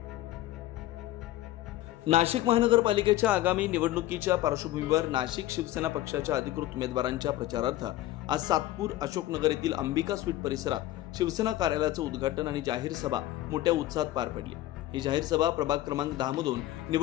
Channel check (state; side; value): quieter; right; 14.9 dB